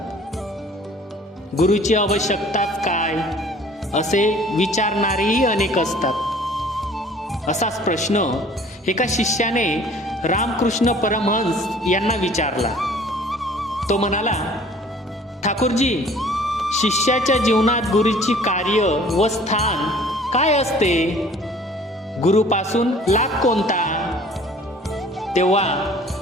गुरुची आवश्यकताच काय असे विचारणारेही अनेक असतात। असाच प्रश्न एका शिष्याने रामकृष्ण परमहंस यांना विचारला। तो म्हणाला, ठाकूरजी, शिष्याच्या जीवनात गुरुची कार्य व स्थान काय असते? गुरुपासून लाभ कोणता? तेव्हा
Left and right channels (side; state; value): both; normal; correlation 0.51